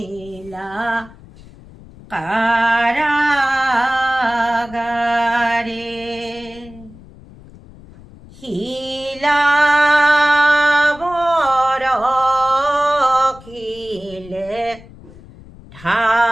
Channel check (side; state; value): left; noise; rumble, 21 dB below the sound